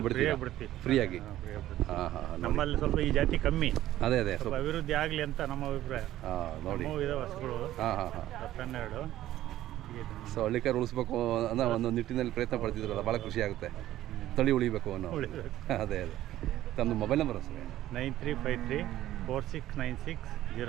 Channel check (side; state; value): left; quieter; 13.8 dB